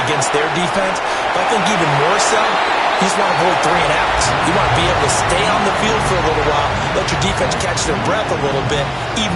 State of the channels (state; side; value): identical; both; correlation 1.00